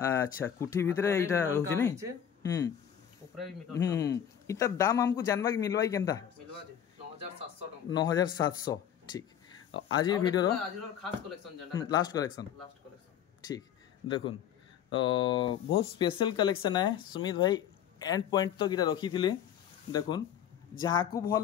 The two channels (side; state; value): right; quieter; 9.3 dB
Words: कुठी भीतर एटा रहउछि नै ऊपर भी मिलन इतर दाम हमको जानबा कि मिलवाई केनता मिलवा दे 9700 टका 9700 ठीक आज ये वीडियो आज खास कलेक्शन जंडा लास्ट कलेक्शन ठीक देखुन बहुत स्पेशल कलेक्शन है सुमित भाई एंड पॉइंट तो गिरा रखी थिले देखुन जहाँ को भल